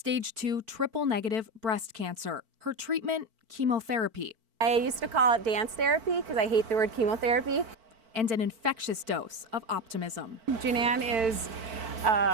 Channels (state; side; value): late; left; 4.5 ms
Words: 2 triple-negative breast cancer. Her treatment, chemotherapy. I used to call it dance therapy because I hate the word chemotherapy. And an infectious dose of optimism. Jean Ann is